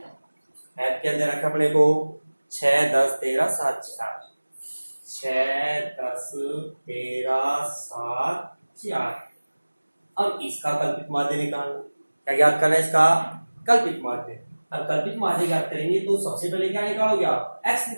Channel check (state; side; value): inverted; both; correlation -1.00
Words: ऐप क्या दे रखा है अपने को 6 10 13 7 4, 6 10 13 7 4। अब इसका कल्पित माध्य निकालना, क्या ज्ञात करना है इसका कल्पित माध्य। अब कल्पित माध्य ज्ञात करेंगे तो सबसे पहले क्या निकालोगे आप x